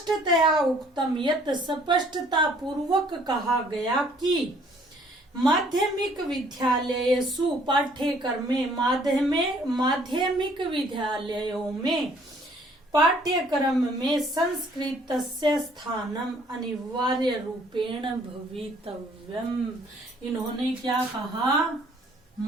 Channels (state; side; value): normal; both; correlation 0.60